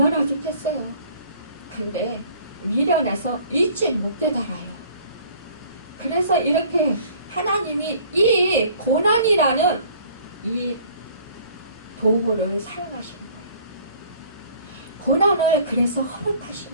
좋겠어요. 근데 미련해서 일찍 못 깨달아요. 그래서 이렇게 하나님이 이 고난이라는 이 도구를 사용하시는 거예요. 고난을 그래서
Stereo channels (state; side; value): inverted; both; correlation -0.53